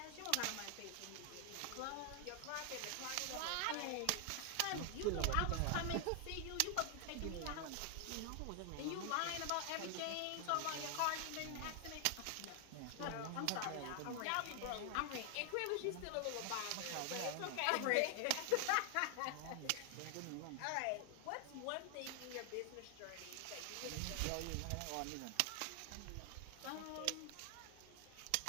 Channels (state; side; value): different; both; correlation 0.00